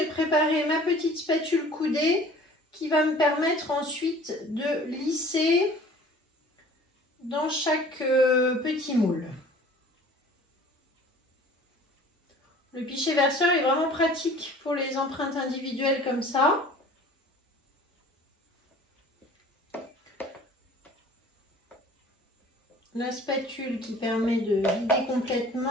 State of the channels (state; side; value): normal; both; correlation 0.48